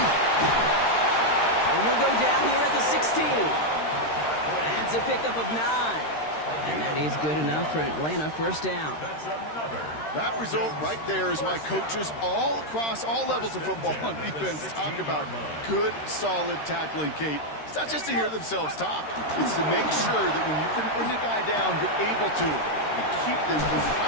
And he'll go down here at the 16. That's a pickup of 9. And that is good enough for Atlanta. 1st down. That result right there is why coaches all across all levels of football and defense talk about good, solid tackling, Kate. It's not just to hear themselves talk. It's to make sure that when you can bring a guy down, you're able to and keep them from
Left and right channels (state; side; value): late; right; 13 ms